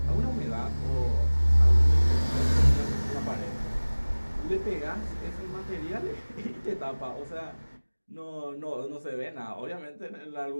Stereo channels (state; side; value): inverted; both; correlation -1.00